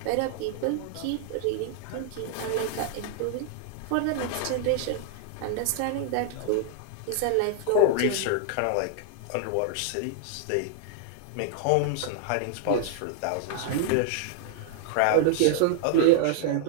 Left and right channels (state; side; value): different; both; correlation -0.01